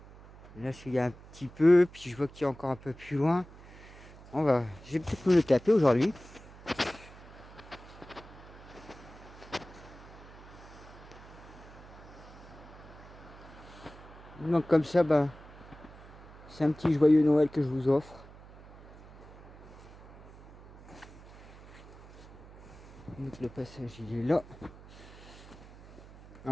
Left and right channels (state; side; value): noise; right; hum, 19 dB below the sound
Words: là, il y a un petit peu, puis je vois qu'il y a encore un peu plus loin. Je vais peut-être me le taper aujourd'hui. Donc comme ça, c'est un petit joyeux Noël que je vous offre. Donc le passage, il est là.